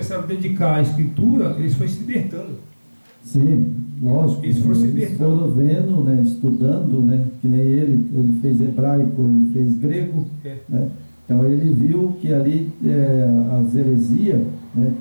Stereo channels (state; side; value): inverted; both; correlation -1.00